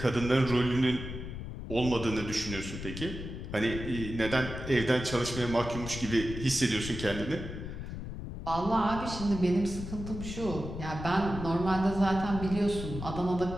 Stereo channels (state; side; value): noise; left; rumble, 8 dB below the sound